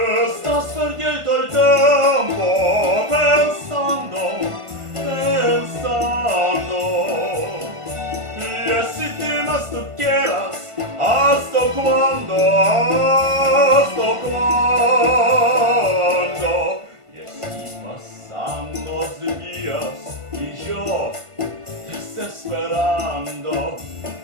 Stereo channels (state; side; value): late; left; 1.5 ms